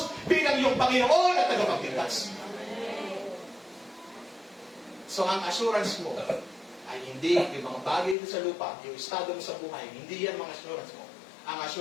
bilang iyong Panginoon at tagapagligtas? So ang assurance mo ay hindi yung mga bagay dito sa lupa, yung estado mo sa buhay, hindi yan mga assurance mo. Ang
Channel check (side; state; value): right; drops out; at 8.2 s